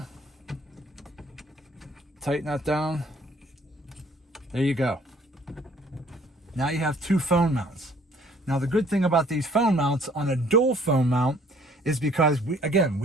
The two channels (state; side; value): normal; both; correlation 0.58